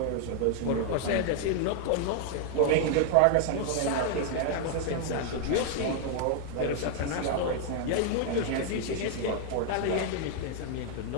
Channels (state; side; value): different; both; correlation 0.00